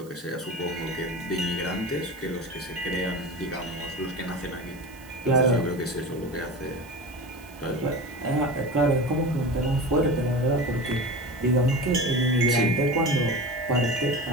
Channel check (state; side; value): noise; right; hiss, 24 dB below the sound